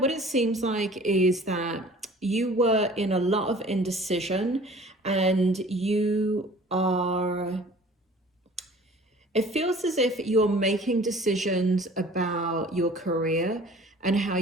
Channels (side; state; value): both; normal; correlation 0.48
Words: it seems like is that you were in a lot of indecision and you are... It feels as if you're making decisions about your career and how